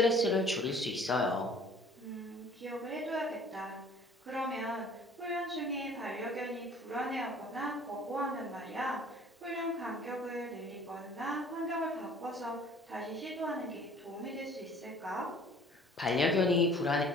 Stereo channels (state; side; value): normal; both; correlation 0.51